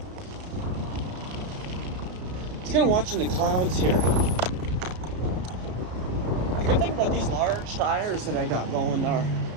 Just kind of watching the clouds here. The good thing about these large tires that I got going are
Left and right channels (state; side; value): late; left; 33 ms